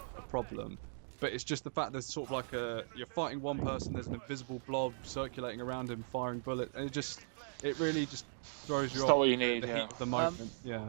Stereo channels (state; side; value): silent; left; digital silence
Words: a problem. But it's just the fact there's sort of like you're fighting one person, there's an invisible blob circulating around him, firing bullets, and it really just throws you off the heat of the moment.